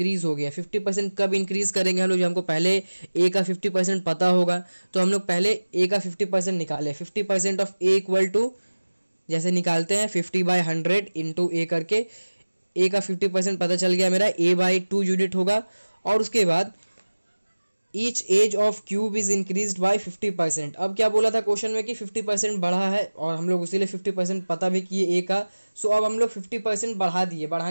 हो गया। 50% कब इंक्रीज करेंगे हम लोग, जो हमको पहले ए का 50% पता होगा। तो हम लोग पहले ए का 50% निकाले। 50% ऑफ ए इक्वल टू, जैसे निकालते हैं 50/100 इंटू ए करके, ए का 50% पता चल गया मेरा, A/2 यूनिट होगा। और उसके बाद each edge of cube is increase by 50%। अब क्या बोला था क्वेश्चन में कि 50% बढ़ा है, और हम लोग उसीलिए 50% पता भी किए ए का। सो अब हम लोग 50% बढ़ा दिए।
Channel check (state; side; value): inverted; both; correlation -1.00